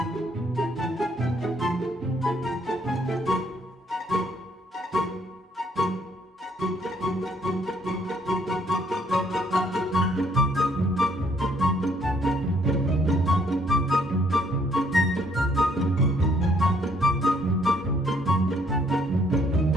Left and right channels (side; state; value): both; normal; correlation 0.66